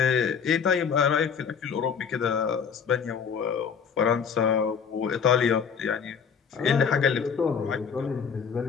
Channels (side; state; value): right; quieter; 6.7 dB